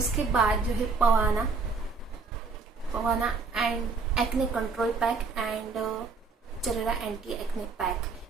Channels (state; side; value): quieter; left; 4.4 dB